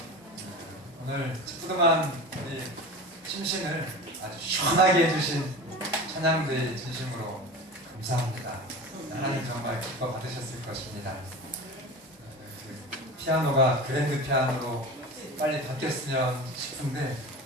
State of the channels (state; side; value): normal; both; correlation 0.32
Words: 오늘 찌뿌둥한 우리 심신을 아주 시원하게 해주신 찬양대에 진심으로 감사합니다. 하나님 정말 기뻐 받으셨을 것입니다. 피아노가 그랜드 피아노로 빨리 바뀌었으면 싶은데